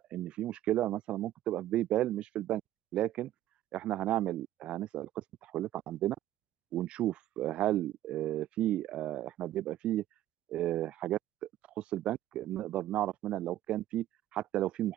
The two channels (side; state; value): left; quieter; 13.4 dB